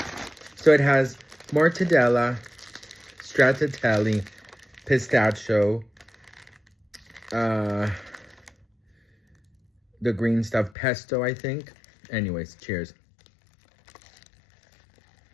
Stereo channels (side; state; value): right; drops out; at 10.7 s